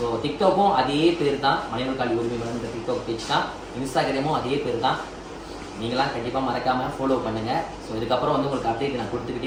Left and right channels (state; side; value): identical; both; correlation 1.00